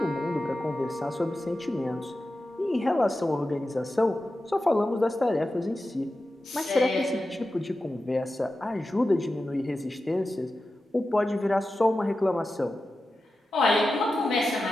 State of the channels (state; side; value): normal; both; correlation 0.92